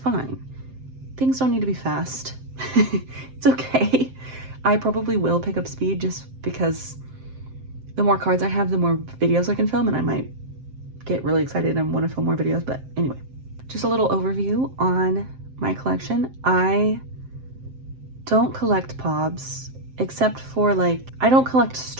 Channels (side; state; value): left; late; 7.7 ms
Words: Things don't need to be fast. It's okay. I probably will pick up speed just because the more cards I have, the more videos I can film, and I might get really excited and want to film more videos. But anyway, just a little overview on my collection. I don't collect POBs except for I don't collect